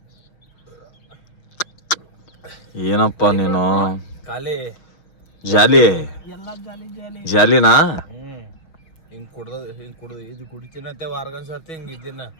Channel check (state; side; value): late; right; 6.2 ms